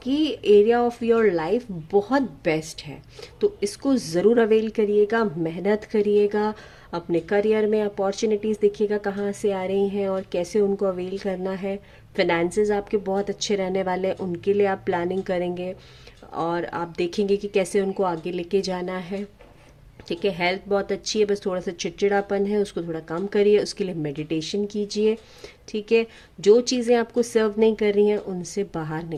एरिया ऑफ योर लाइफ बहुत बेस्ट है, तो इसको ज़रूर अवेल करिएगा, मेहनत करिएगा, अपने करियर में अपॉर्चुनिटीज़ देखिएगा कहाँ से आ रही हैं और कैसे उनको अवेल करना है। फिनेंसेस आपके बहुत अच्छे रहने वाले हैं, उनके लिए आप प्लानिंग करेंगे और आप देखेंगे कि कैसे उनको आगे लेके जाना है, ठीक है। हेल्थ बहुत अच्छी है, बस थोड़ा सा चिड़चिड़ापन है, उसको थोड़ा कम करिए, उसके लिए मेडिटेशन कीजिए, ठीक है। जो चीज़ें आपको सर्व नहीं कर रही हैं उनसे बाहर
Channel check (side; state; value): both; identical; correlation 1.00